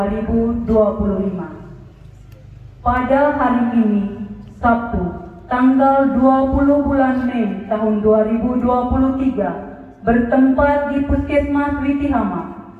Pada hari ini, Sabtu, tanggal 20 bulan Mei tahun 2023, bertempat di Puskesmas Witi Hama,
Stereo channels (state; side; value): identical; both; correlation 1.00